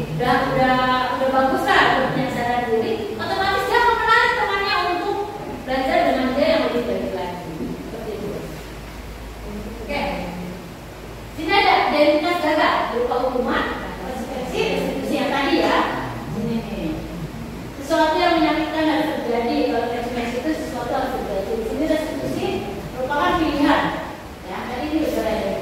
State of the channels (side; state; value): both; identical; correlation 1.00